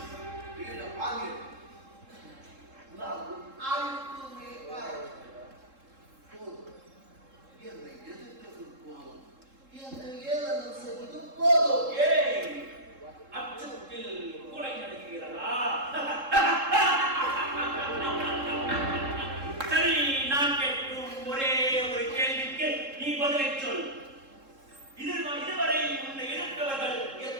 என்னை எதிர்த்தது போதும், என்னை ஏளனம் செய்வது போதும். ஏய், அச்சத்தில் கொலை நடக்கிறதா? சரி, நான் கேட்கும் ஒரே ஒரு கேள்விக்கு நீ பதிலை சொல். இதுவரை உன்னை எதிர்த்தவர்கள்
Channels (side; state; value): left; late; 3.7 ms